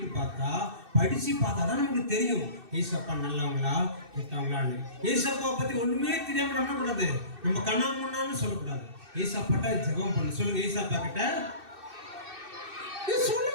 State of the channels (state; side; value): late; left; 2.6 ms